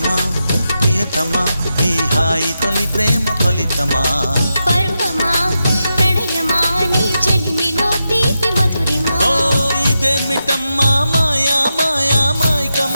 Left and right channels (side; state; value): both; inverted; correlation -0.88